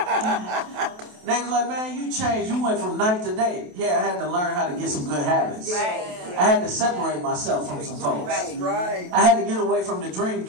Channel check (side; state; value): left; late; 28 ms